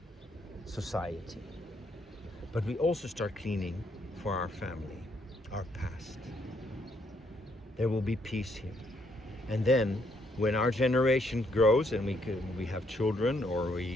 society. But we also start cleaning for our family, our past. There will be peace here. And then when our generation grows and we have children, or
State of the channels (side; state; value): both; normal; correlation 0.72